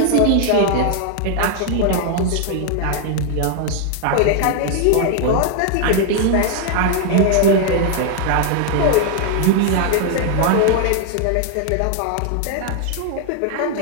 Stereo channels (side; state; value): both; different; correlation 0.00